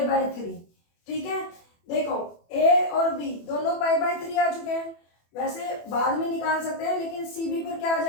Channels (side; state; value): right; late; 24 ms